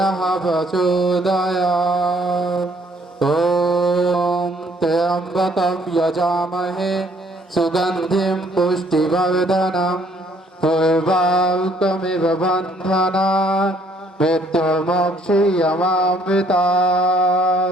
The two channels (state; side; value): normal; both; correlation 0.64